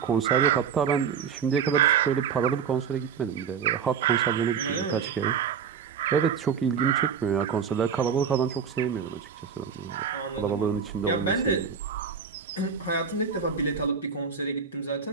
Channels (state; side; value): quieter; left; 6.8 dB